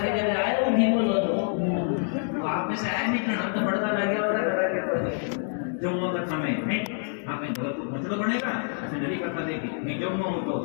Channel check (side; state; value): right; silent; digital silence